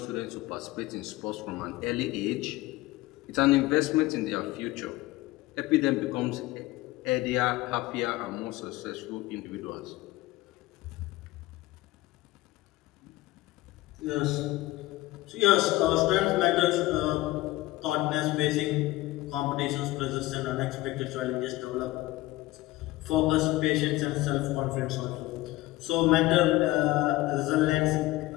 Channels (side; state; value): right; quieter; 18.5 dB